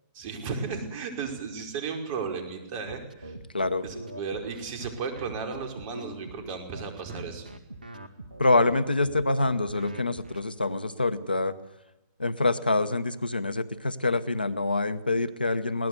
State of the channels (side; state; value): both; inverted; correlation -0.74